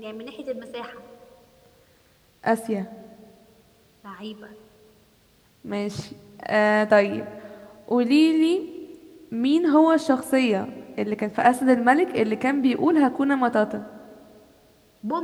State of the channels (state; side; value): identical; both; correlation 1.00